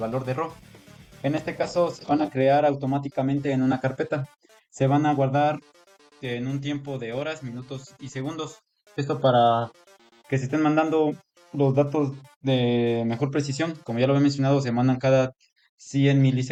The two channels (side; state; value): both; identical; correlation 1.00